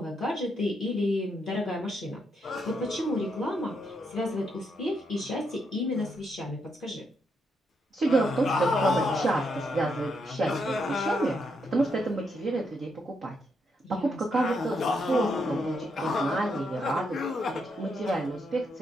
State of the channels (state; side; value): normal; both; correlation 0.79